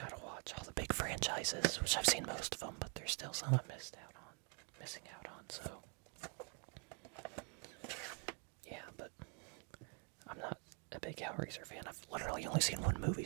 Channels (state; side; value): quieter; left; 36.9 dB